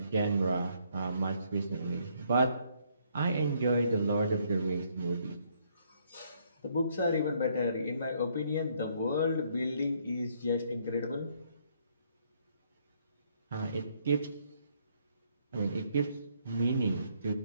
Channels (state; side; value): inverted; both; correlation -0.69